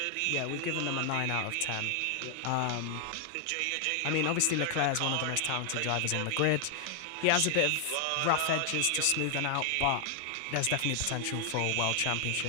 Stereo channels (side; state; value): both; different; correlation 0.00